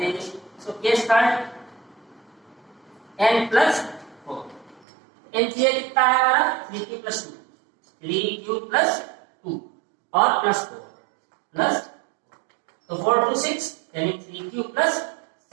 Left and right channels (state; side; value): drops out; left; at 4.8 s